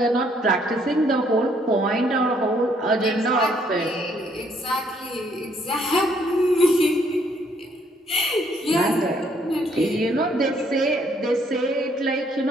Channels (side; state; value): both; normal; correlation 0.68